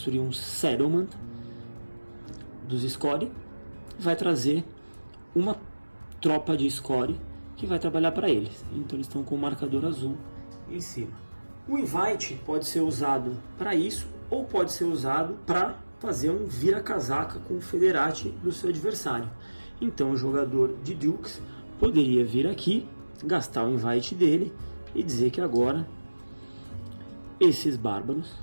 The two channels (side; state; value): both; inverted; correlation -1.00